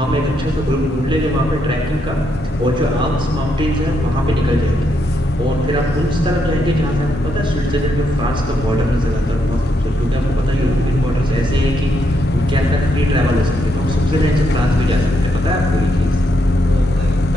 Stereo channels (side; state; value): both; normal; correlation 0.78